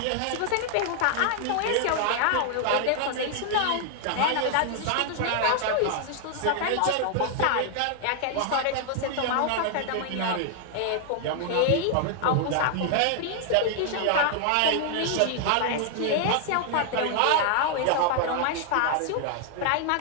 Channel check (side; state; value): both; different; correlation 0.00